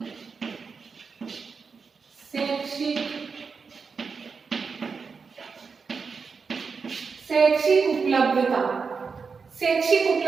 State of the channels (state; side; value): quieter; left; 5.2 dB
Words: शैक्षिक उपलब्धता। शैक्षिक